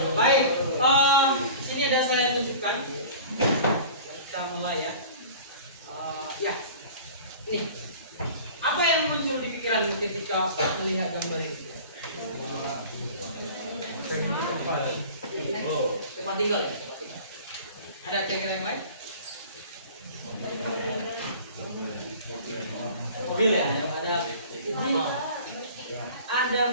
Baik, sini ada saya tunjukkan. Kita mulai ya. Ya, ini. Apa yang muncul di pikiran ketika melihat gambar ini? Tempat tinggal ya? Ada kira-kira yang lain? Mobil ya?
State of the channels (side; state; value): both; inverted; correlation -0.42